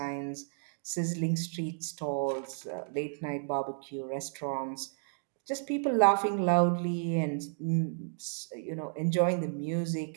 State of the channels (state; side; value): silent; left; digital silence